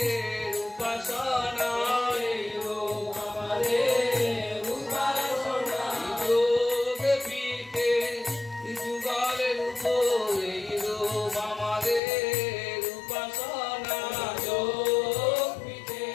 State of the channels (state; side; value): drops out; right; at 12.0 s